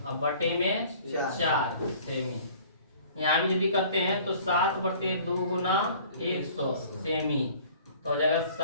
अब बटे में 4 सेमी। यहाँ भी यदि करते हैं तो 7/2 गुना 100 सेमी तो हो जाएगा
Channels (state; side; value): inverted; both; correlation -0.50